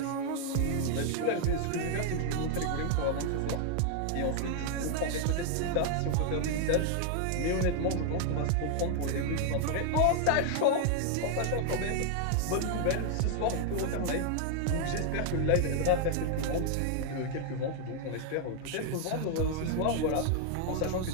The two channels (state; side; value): different; both; correlation 0.00